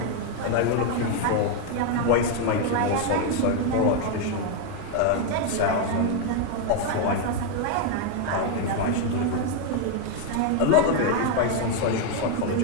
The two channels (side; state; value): both; different; correlation 0.01